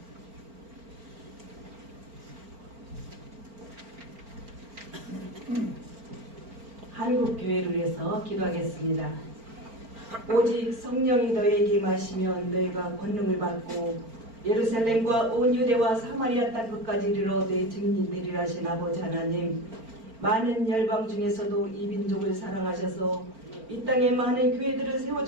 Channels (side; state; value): left; late; 4.4 ms